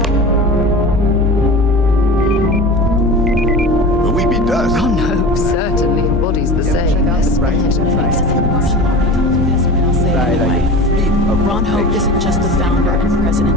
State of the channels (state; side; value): normal; both; correlation 0.34